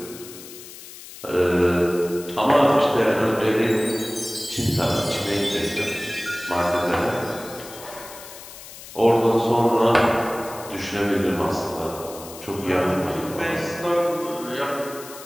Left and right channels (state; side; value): noise; left; hiss, 15 dB below the sound